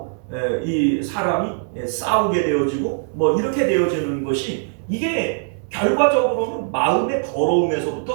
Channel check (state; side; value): silent; left; 65 dB below the other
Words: 이 사람이 싸우게 되어지고 뭐 이렇게 되어지는 것이, 이게 결과적으로는 마음의